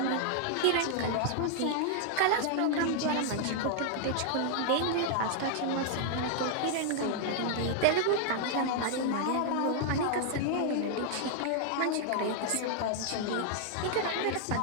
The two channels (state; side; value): different; both; correlation -0.01